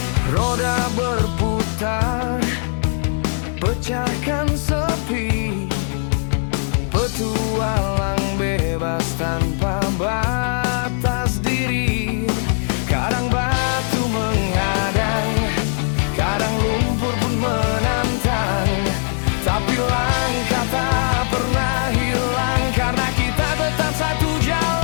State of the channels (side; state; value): right; silent; 66 dB below the other